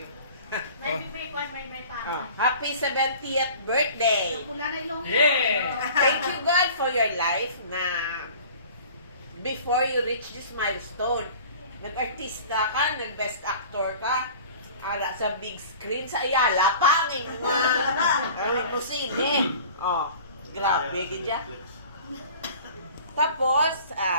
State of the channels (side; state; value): both; inverted; correlation -0.44